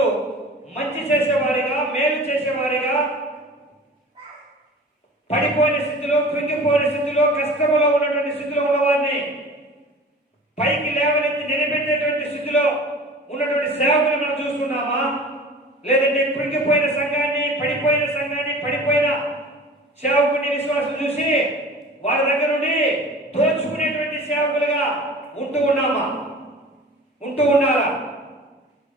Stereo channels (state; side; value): normal; both; correlation 0.41